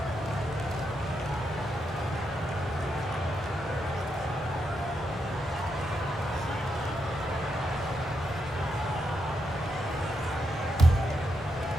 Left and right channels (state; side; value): normal; both; correlation 0.83